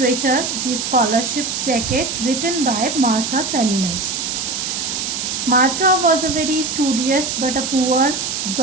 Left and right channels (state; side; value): noise; right; hiss, 3 dB below the sound